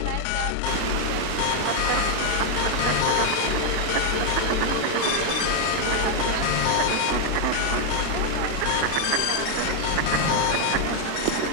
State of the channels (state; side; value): different; both; correlation 0.01